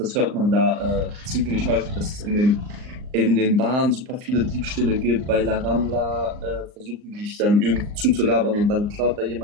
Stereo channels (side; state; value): left; late; 39 ms